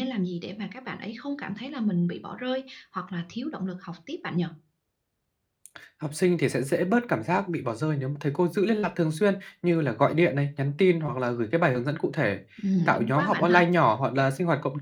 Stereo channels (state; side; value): identical; both; correlation 1.00